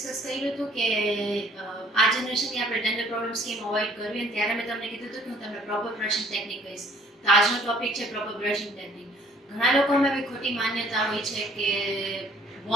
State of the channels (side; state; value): both; normal; correlation 0.57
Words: કર્યું હતું કે આ જનરેશનની આપણે ડેન્ટલ પ્રોબ્લેમ્સ કેમ અવોઇડ કરવી, અને ત્યારે મેં તમને કીધું હતું કે હું તમને પ્રોપર બ્રશિંગ ટેકનિક કહીશ. તો આજનો ટોપિક છે પ્રોપર બ્રશિંગ ટેકનિક. ઘણા લોકોમાં એવી ખોટી માન્યતા હોય છે કે